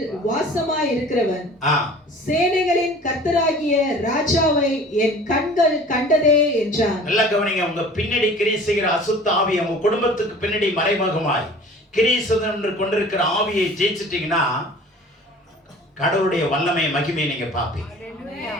வாசமாய் இருக்கிறவன், சேனைகளின் கர்த்தராகிய ராஜாவை என் கண்கள் கண்டதே என்றான். நல்லா கவனிங்க. உங்க பின்னாடி கிரியை செய்கிற அசுத்த ஆவி உங்க குடும்பத்துக்கு பின்னாடி மறைமுகமாய் கிரியை செய்து கொண்டிருக்கிற ஆவியை ஜெயிச்சிட்டீங்கன்னா கடவுளுடைய வல்லமை மகிமையை நீங்க பார்ப்பீங்க.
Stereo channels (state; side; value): normal; both; correlation 0.45